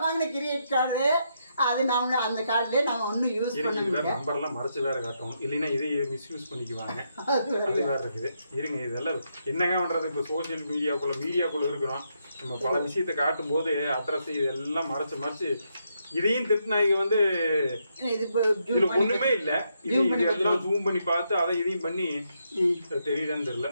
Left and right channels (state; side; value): inverted; both; correlation -0.79